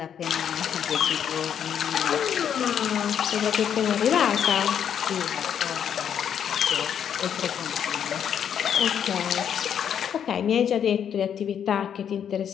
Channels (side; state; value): right; quieter; 8.6 dB